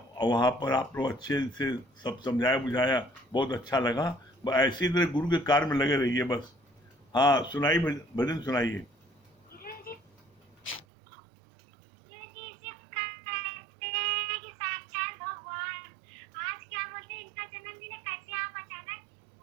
वहाँ पर आप लोग अच्छे से सब समझाया बुझाया, बहुत अच्छा लगा। बस ऐसी तरह गुरु के कार्य में लगे रहिए बस। हाँ सुनाइए, भजन सुनाइए। गुरुजी सिर्फ कहते हैं कि साक्षात भगवान। आज क्या बोलते हैं, इनका जन्मदिन है, कैसे आप अचानक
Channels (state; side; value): drops out; left; at 10.9 s